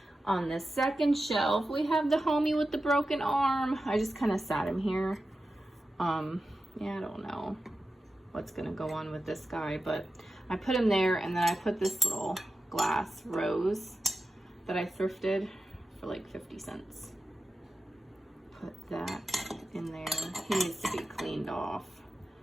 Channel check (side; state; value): both; normal; correlation 0.92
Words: On the second shelf, we have the homie with the broken arm. I just kind of sat him here. Yeah, I don't know what's gonna go on with this guy, but I put him there, and then I put this little glass rose that I thrifted for like 50 cents. Put that in there. He needs to be cleaned off.